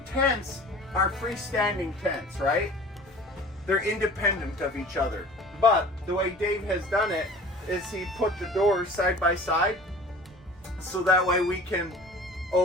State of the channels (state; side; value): normal; both; correlation 0.43